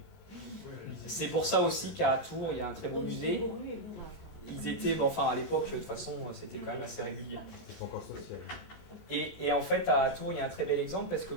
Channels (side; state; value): right; late; 19 ms